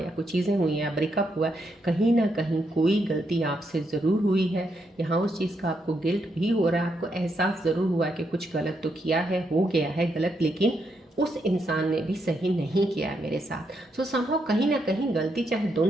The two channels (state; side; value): normal; both; correlation 0.80